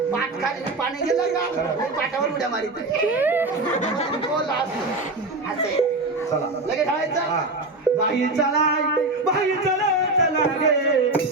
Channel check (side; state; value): left; quieter; 3.0 dB